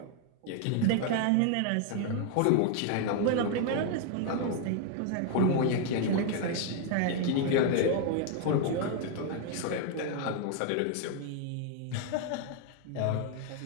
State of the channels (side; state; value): both; different; correlation 0.00